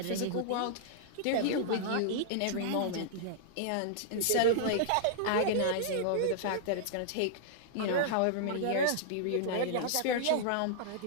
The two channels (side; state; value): both; different; correlation -0.02